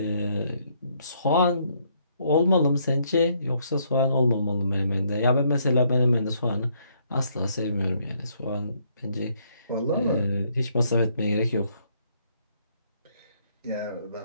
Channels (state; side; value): inverted; both; correlation -0.70